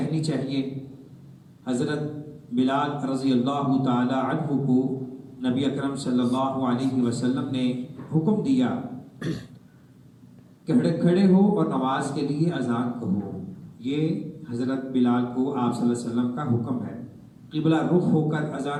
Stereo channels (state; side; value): identical; both; correlation 1.00